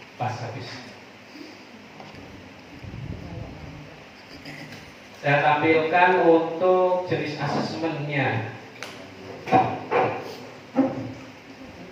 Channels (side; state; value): both; identical; correlation 1.00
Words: Saya tampilkan untuk jenis asesmennya.